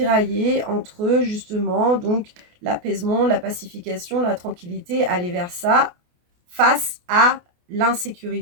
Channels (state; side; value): late; left; 28 ms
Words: entre, justement, donc, l'apaisement, la pacification, la tranquillité, aller vers ça, face à